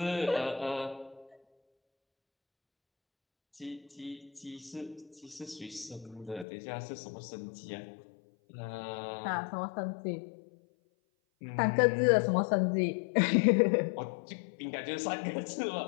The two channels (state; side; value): drops out; right; at 6.5 s